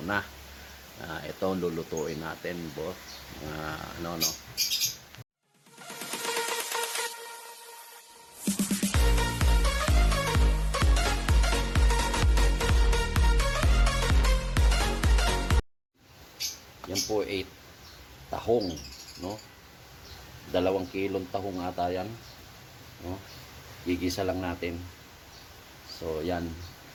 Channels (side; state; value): both; identical; correlation 1.00